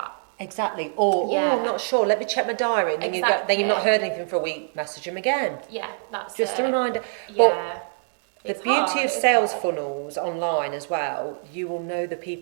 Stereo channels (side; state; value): left; silent; digital silence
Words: Exactly. Or I'm not sure. Let me check my diary. And then you've not heard anything for a week. Message them again. Yeah, that's just it. a reminder. Yeah. But the beauty of sales funnels online as well, you will know the